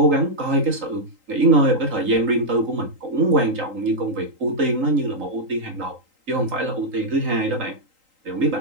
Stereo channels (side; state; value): left; late; 3.8 ms